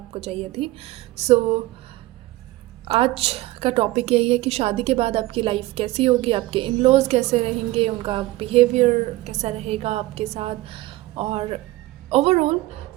चाहिए थी। सो आज का टॉपिक यही है कि शादी के बाद आपकी लाइफ कैसी होगी, आपके इन लॉज कैसे रहेंगे, उनका बिहेवियर कैसा रहेगा आपके साथ, और ओवरऑल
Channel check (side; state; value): left; quieter; 18.5 dB